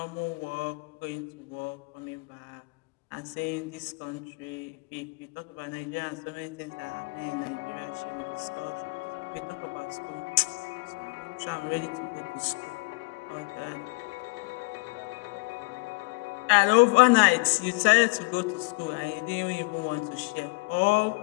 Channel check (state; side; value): quieter; right; 29.5 dB